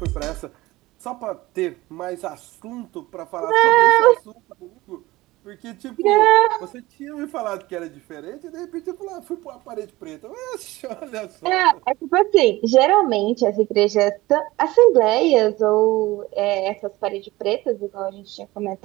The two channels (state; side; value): quieter; left; 19.2 dB